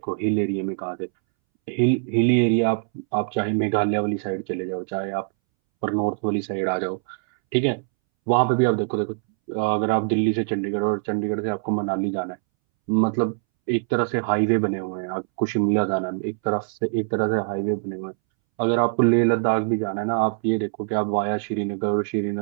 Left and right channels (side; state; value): left; silent; 63 dB below the other